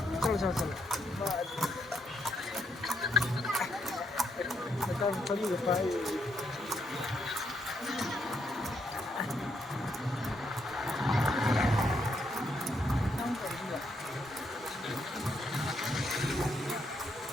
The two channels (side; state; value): both; normal; correlation 0.76